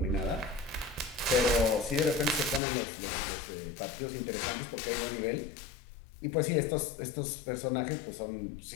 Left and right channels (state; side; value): drops out; right; at 2.6 s